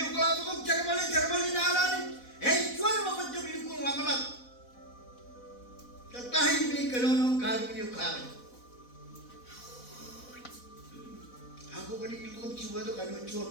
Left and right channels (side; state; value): right; late; 4.0 ms